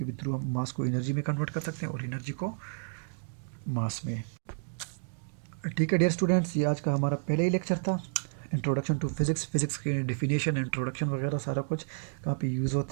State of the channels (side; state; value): left; silent; digital silence